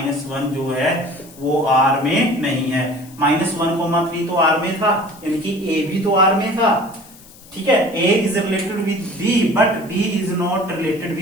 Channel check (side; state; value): left; noise; hiss, 22 dB below the sound